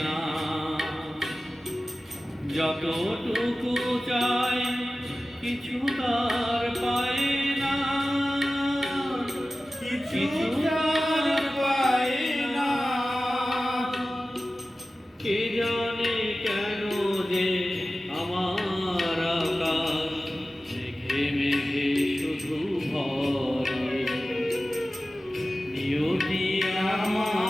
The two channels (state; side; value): normal; both; correlation 0.96